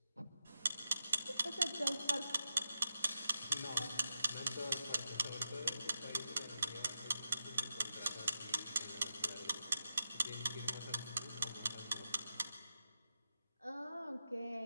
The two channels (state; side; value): inverted; both; correlation -0.86